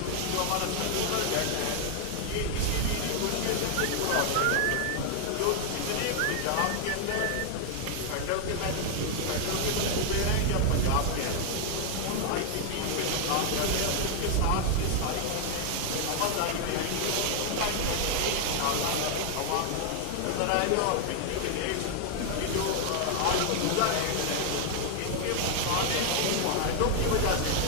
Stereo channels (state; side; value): different; both; correlation 0.00